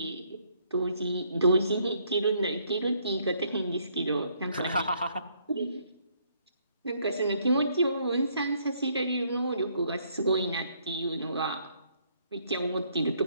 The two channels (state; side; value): inverted; both; correlation -0.68